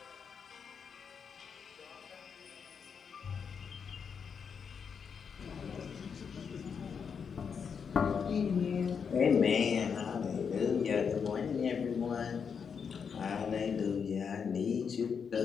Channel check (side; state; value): right; quieter; 6.5 dB